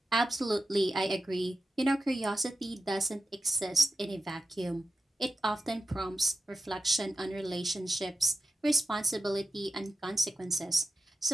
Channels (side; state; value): both; normal; correlation 0.91